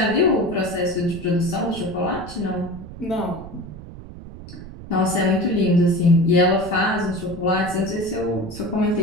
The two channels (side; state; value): right; noise; rumble, 14 dB below the sound